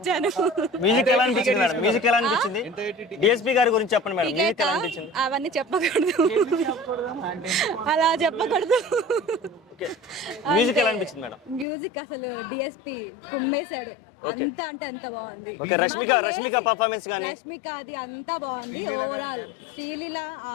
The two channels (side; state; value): right; drops out; at 11.7 s